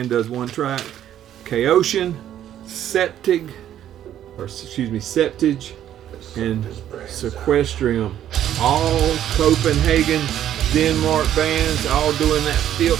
does 1 track. Chaotian, Septige, and Sequestrium. All Copenhagen, Denmark bands, all doing that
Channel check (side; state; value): left; quieter; 11.1 dB